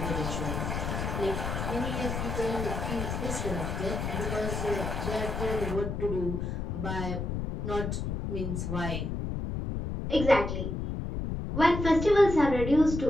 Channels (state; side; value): noise; left; rumble, 3 dB below the sound